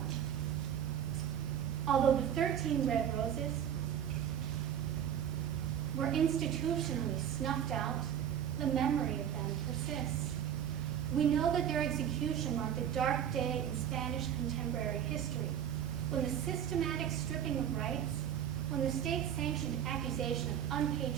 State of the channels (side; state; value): left; quieter; 9.4 dB